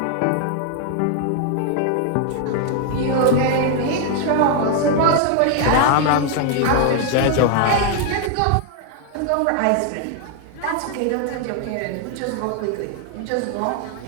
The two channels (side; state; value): both; different; correlation 0.00